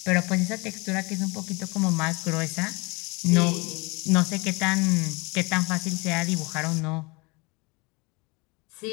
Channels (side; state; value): right; quieter; 27.0 dB